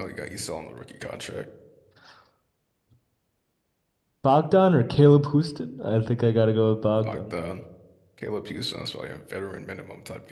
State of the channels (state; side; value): identical; both; correlation 1.00